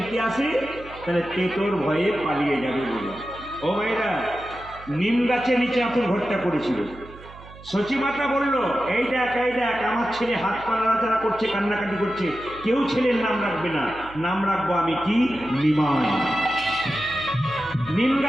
আসে তাহলে তেতোর ভয়ে পালিয়ে যাবে বলে। ও ভাইরা, নিম গাছের নিচে আতুর ঘরটা করেছিল। সচিমাতা বলল, এই দেখ আমার ছেলে হাত পা নাড়াচাড়া করছে, কান্নাকাটি করছে, কেউ ছেলের নাম রাখবে না, নাম রাখবো আমি কি, নিমাই। নিম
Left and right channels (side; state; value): right; noise; hum, 19 dB below the sound